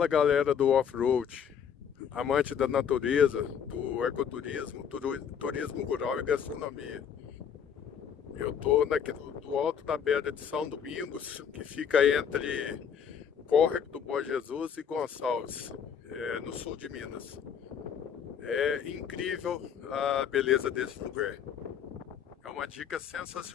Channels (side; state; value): right; quieter; 7.8 dB